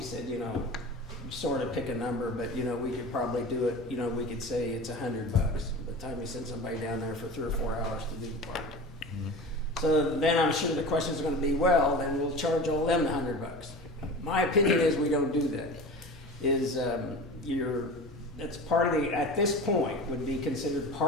said, sort of pick a number, but we could probably do it. We could say it's $100 by the time we send somebody down there for 3 or 4 hours to do the parking. Mm-hmm. So then I'm sure the question is going to be, well, then we'll charge all them $100. My opinion is we don't do that. That's part of the, at this point, would be considered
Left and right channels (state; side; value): normal; both; correlation 0.33